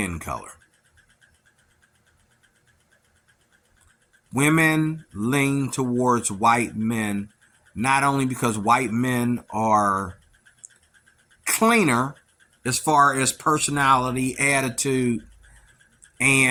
color. Women lean towards white men, not only because white men are cleaner as far as personality, attitude,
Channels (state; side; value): identical; both; correlation 1.00